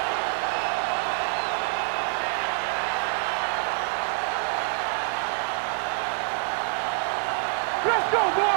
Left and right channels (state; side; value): silent; left; 57 dB below the other